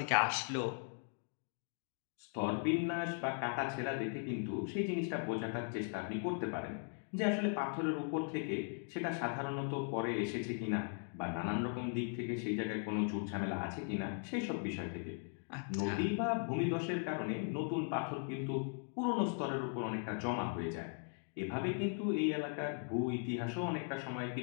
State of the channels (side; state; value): right; silent; 52 dB below the other